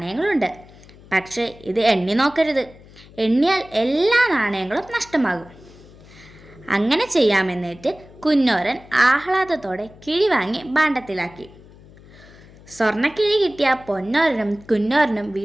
പക്ഷേ ഇത് എണ്ണി നോക്കരുത്. എണ്ണിയാൽ എല്ലാ നാണയങ്ങളും നഷ്ടമാകും. അങ്ങനെ ചെയ്യാമെന്നിട്ട് കുന്നോരൻ ആഹ്ലാദത്തോടെ കിഴി വാങ്ങി ഭാണ്ഡത്തിലാക്കി. സ്വർണ്ണക്കിഴി കിട്ടിയ പൊന്നോരനും കുന്നോരനും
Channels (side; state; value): left; noise; hum, 22 dB below the sound